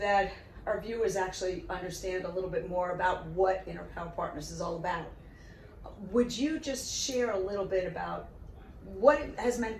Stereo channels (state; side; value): identical; both; correlation 1.00